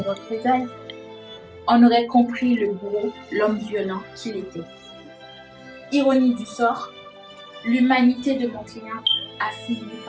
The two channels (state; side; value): identical; both; correlation 1.00